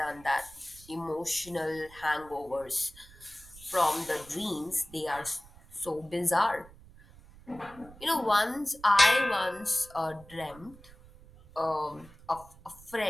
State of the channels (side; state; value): right; noise; rumble, 22 dB below the sound